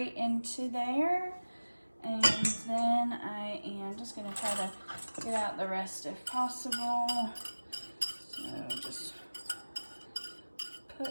into there. And then I am just going to try to get out the rest if possible. So just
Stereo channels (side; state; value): both; inverted; correlation -1.00